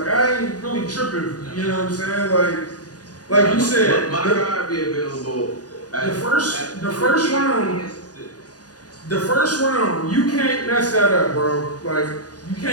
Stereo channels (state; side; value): late; right; 0.68 ms